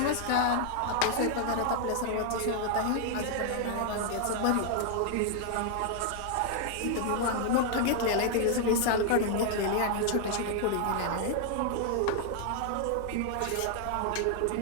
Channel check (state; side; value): different; both; correlation 0.00